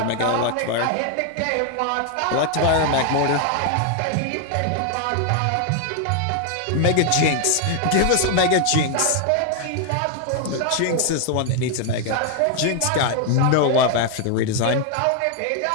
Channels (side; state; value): both; different; correlation 0.00